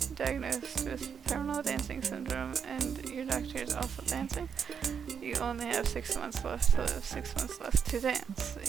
diagnosed with terminal dancing syndrome and your doctor is also dancing. You only have 6 months left to live, 6 months left to dance.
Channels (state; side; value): quieter; left; 7.0 dB